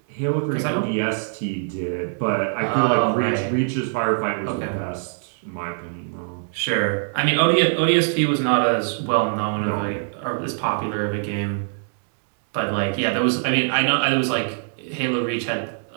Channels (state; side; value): silent; left; digital silence